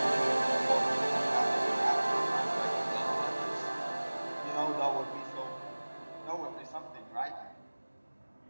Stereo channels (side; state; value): both; inverted; correlation -1.00